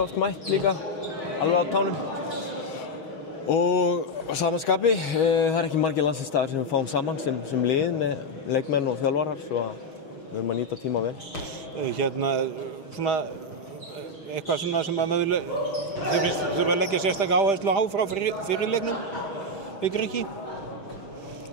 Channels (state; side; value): late; right; 6.3 ms